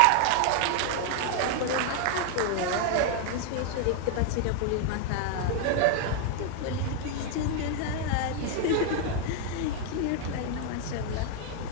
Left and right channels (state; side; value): different; both; correlation 0.00